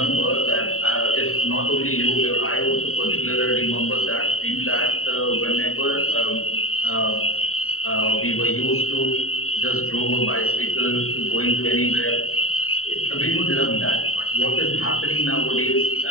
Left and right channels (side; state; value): right; late; 0.63 ms